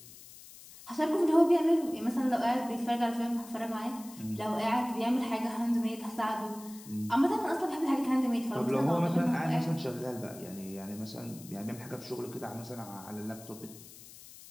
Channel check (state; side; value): noise; left; hiss, 18 dB below the sound